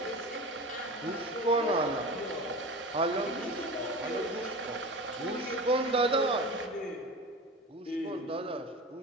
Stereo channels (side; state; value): both; normal; correlation 0.31